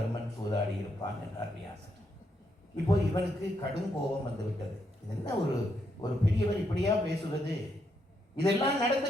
சூதாடி இருப்பான் என்றார் வியாசர். இப்போ இவனுக்கு கடும் கோபம் வந்து விட்டது. இது என்ன ஒரு பெரியவர் இப்படியா பேசுவது? இதெல்லாம்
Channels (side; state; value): both; normal; correlation 0.78